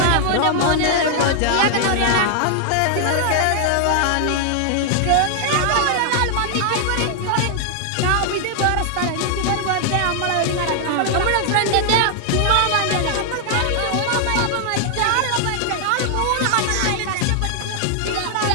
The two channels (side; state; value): both; different; correlation 0.00